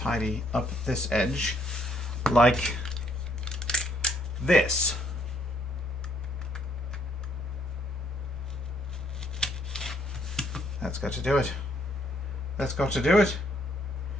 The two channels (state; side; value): normal; both; correlation 0.68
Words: up this edge like this. That's got to do it. That's got to do it.